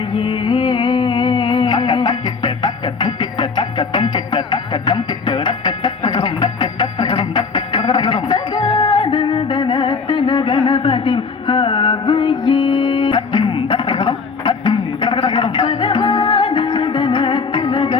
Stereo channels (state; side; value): quieter; right; 5.0 dB